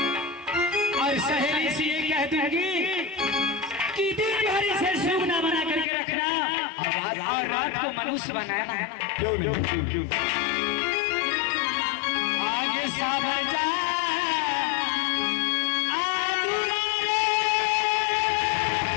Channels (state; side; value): drops out; right; at 5.9 s